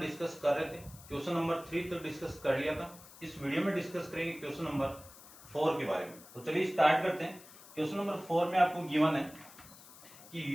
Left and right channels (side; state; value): left; noise; hiss, 19 dB below the sound